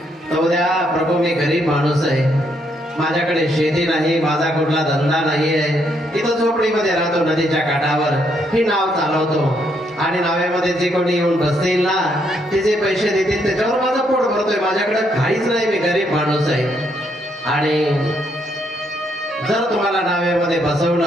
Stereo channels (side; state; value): both; normal; correlation 0.74